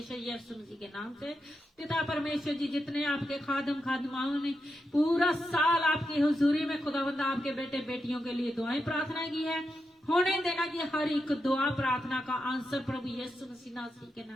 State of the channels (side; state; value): both; normal; correlation 0.86